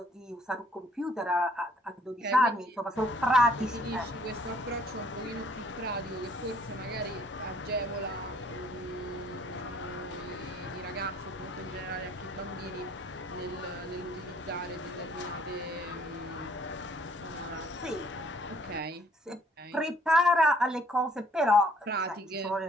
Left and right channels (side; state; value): both; normal; correlation 0.61